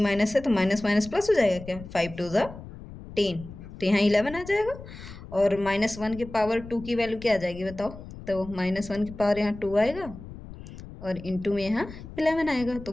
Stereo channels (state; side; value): noise; left; rumble, 14 dB below the sound